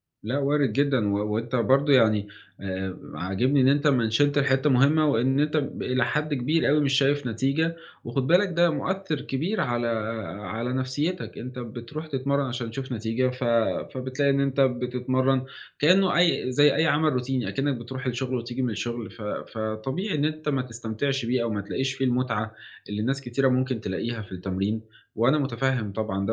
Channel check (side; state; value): both; identical; correlation 1.00